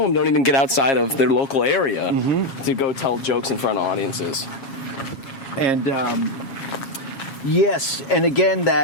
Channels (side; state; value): right; late; 7.3 ms